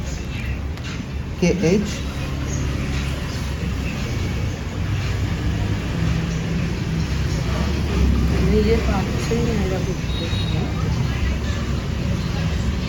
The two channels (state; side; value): identical; both; correlation 1.00